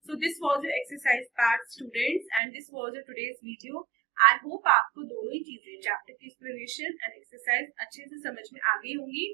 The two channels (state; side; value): drops out; left; at 2.4 s